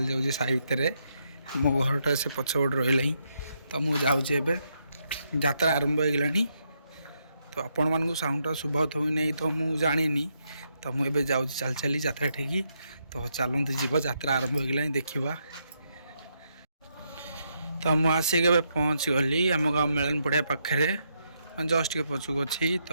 जाऊँगी साई भितर मो घरटा से पछपट रही। तो मुझे जाऊँगी यात्रा आरंभ हो गलानी। तो आपण मानू साउंडटा शुभत हो नहीं तो मुझे जानी। तो मुझे जाऊँ चल चली यात्रा ठीक। तो चलते जीव यात्रा आरंभ हो गलानी देखा। तो मुझे आसिक पहुँच गली आम गाँव मेलन पड़िया पाखे जस्ट के पछुक अच्छी।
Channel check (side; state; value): both; inverted; correlation -0.79